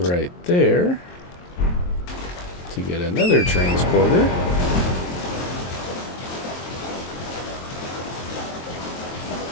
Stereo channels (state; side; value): late; right; 23 ms